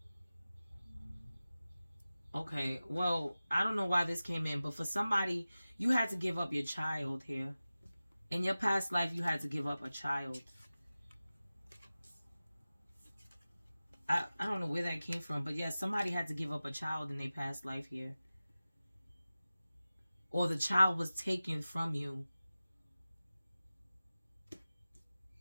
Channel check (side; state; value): both; inverted; correlation -0.96